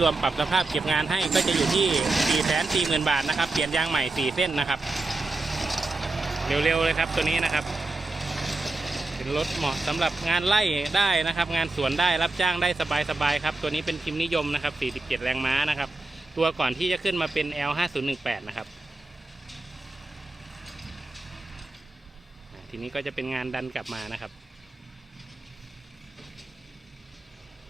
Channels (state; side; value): quieter; left; 3.2 dB